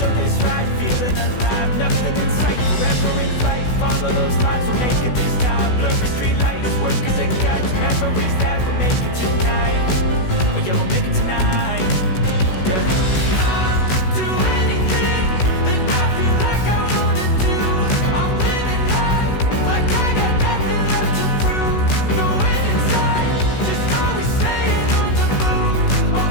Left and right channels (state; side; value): late; right; 16 ms